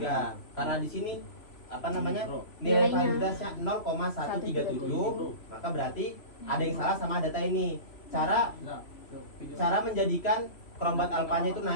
Karena di sini apa namanya? Nilai Nilainya validitasnya 0,137, maka berarti ada yang salah sama data ini. Cara menjadikan kerombat alfanya itu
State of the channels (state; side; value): late; right; 3.0 ms